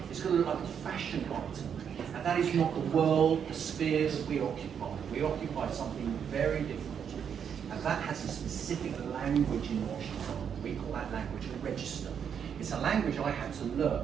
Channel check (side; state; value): left; quieter; 7.7 dB